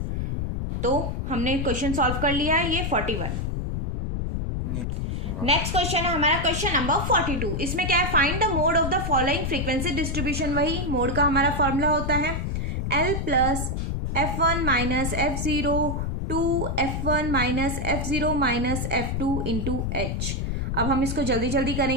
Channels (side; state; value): left; noise; rumble, 2 dB below the sound